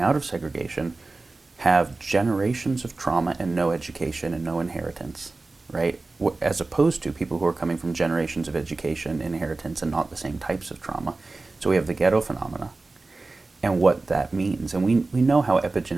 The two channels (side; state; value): left; quieter; 3.5 dB